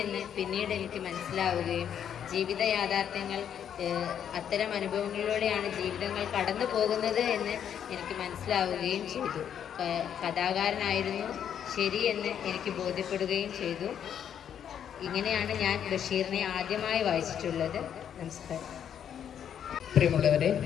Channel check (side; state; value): right; quieter; 9.0 dB